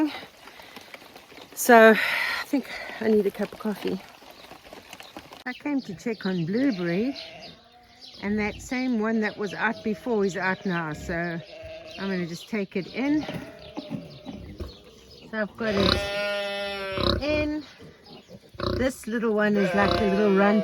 So I think I need a cup of coffee. I came to check on Blueberry, and that same one that was out before is out now. So I'm going to just take it in. So I've got it in. This little one is like the little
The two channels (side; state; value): both; identical; correlation 1.00